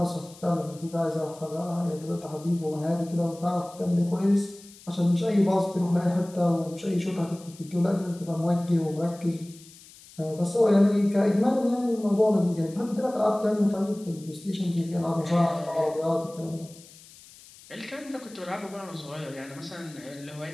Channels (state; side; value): noise; left; hiss, 22 dB below the sound